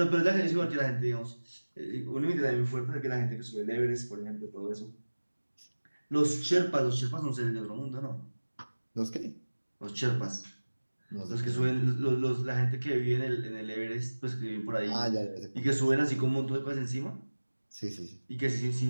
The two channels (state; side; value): inverted; both; correlation -1.00